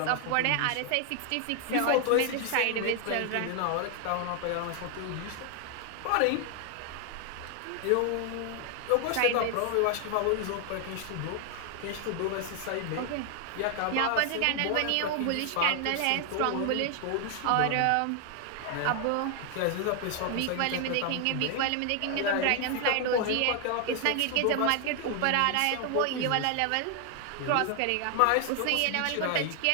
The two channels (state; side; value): different; both; correlation 0.00